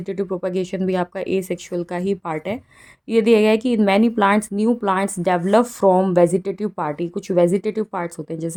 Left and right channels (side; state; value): both; identical; correlation 1.00